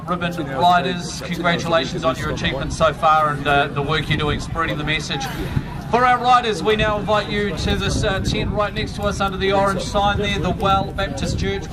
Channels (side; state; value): both; identical; correlation 1.00